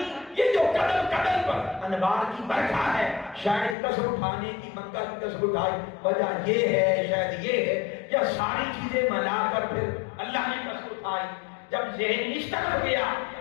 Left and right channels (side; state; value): right; drops out; at 3.8 s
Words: یہ جو قدم قدم پر انوار کی برکھا ہے، شاید قسم اٹھانے کی، مکہ کی قسم اٹھائی وجہ یہ ہے، شاید یہ ہے، یا ساری چیزیں ملا کر پھر اللہ نے قسم اٹھائی۔ جب ذہن اس طرف گیا،